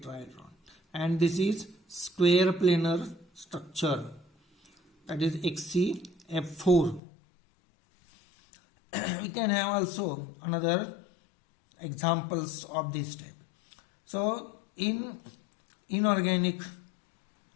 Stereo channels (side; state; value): right; drops out; at 7.0 s